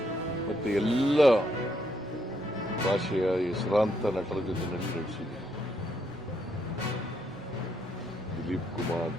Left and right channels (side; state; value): both; normal; correlation 0.75